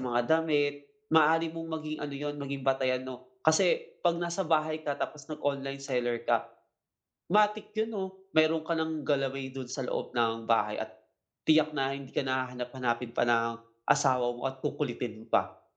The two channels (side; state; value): both; identical; correlation 1.00